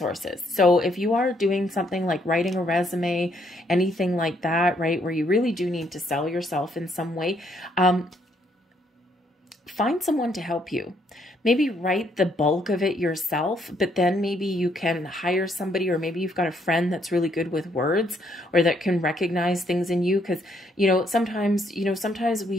So if you are doing something like writing a resume, anything like that, right, where you really do need to sell yourself in some way, find someone to help you. maybe write the bulk of it yourself, but then maybe you can hire somebody, or maybe you've got a friend that's really good with words or that can recognize things in you. Because, sometimes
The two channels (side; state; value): both; normal; correlation 0.71